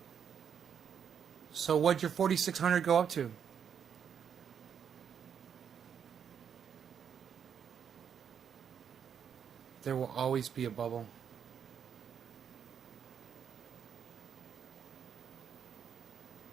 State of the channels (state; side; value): quieter; left; 7.8 dB